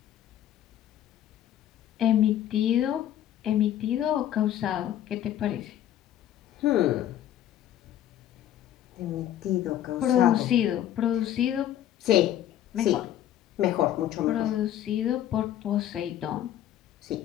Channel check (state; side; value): quieter; right; 11.6 dB